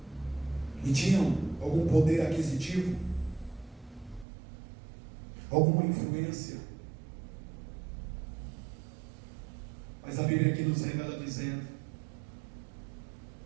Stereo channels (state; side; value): drops out; left; at 4.2 s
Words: e tinham algum poder aquisitivo, alguma influência. Mas a Bíblia aqui nos revela dizendo